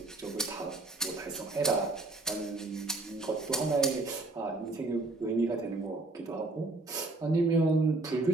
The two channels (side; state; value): left; quieter; 3.0 dB